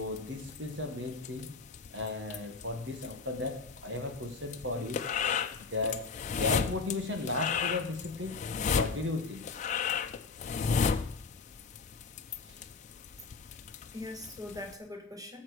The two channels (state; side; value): quieter; right; 4.5 dB